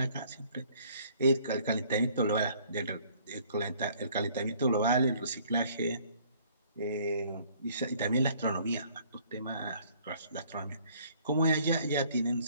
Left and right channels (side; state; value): both; inverted; correlation -0.59